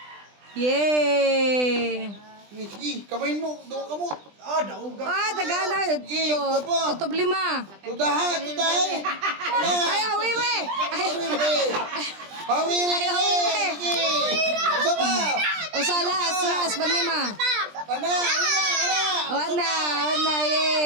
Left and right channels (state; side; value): late; left; 20 ms